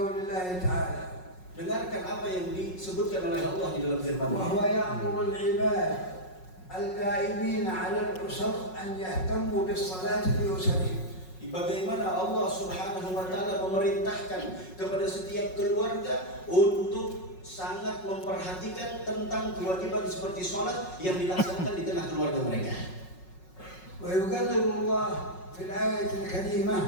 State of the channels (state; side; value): late; right; 5.4 ms